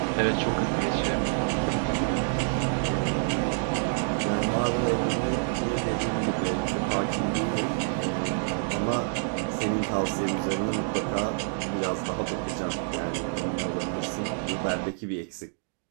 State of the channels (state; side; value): silent; left; digital silence